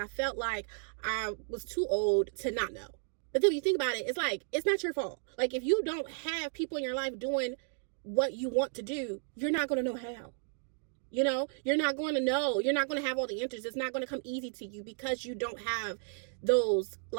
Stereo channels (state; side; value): silent; left; 56 dB below the other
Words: felt like I was too old to not know. But then when you think about it, it's like, it's not your fault. Like, if you don't have people in your life doing what you want to do, you're not going to know how. You're not going to know. You're not going to have all the answers. It's not going to come easy to you because you don't have those